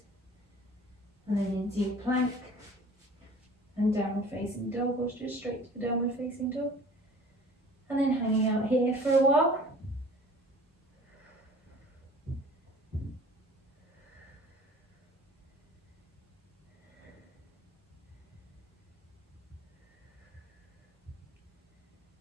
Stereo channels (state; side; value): normal; both; correlation 0.47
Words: and then into your plank and downward facing dog, or just straight to the downward facing dog, and then hanging out here for a while.